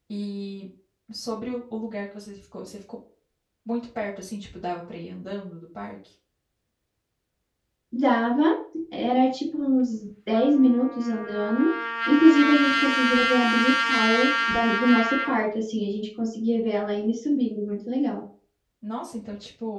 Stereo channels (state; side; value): identical; both; correlation 1.00